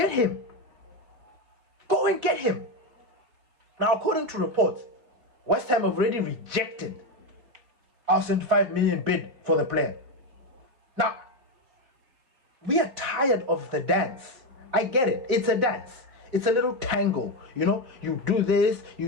him. Go and get him. Now, according to reports, West Ham have already rejected our 75 million bid for the player. Now, we are tired of the dance. I get it. It's a dance. It's a little tango. You know, you do this,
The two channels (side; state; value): left; late; 4.1 ms